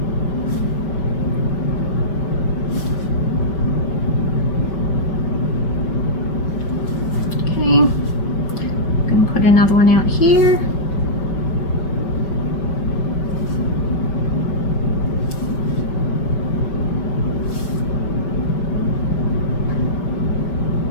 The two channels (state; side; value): late; right; 5.1 ms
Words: Okay, I'm going to put another one out here.